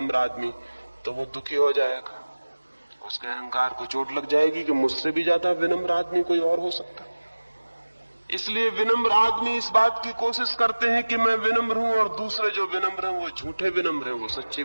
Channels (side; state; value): both; inverted; correlation -1.00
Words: आदमी, तो वो दुखी हो जाएगा। उसके अहंकार को चोट लग जाएगी कि मुझसे भी ज्यादा विनम्र आदमी कोई और हो सकता। इसलिए विनम्र आदमी इस बात की कोशिश करते हैं कि मैं विनम्र हूं, और दूसरे जो विनम्र हैं वो झूठे विनम्र हैं, वो सच्ची